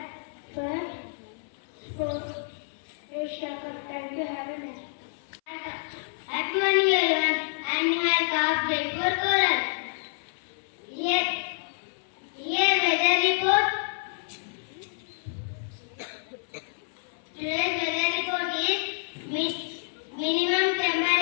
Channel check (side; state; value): right; silent; 59 dB below the other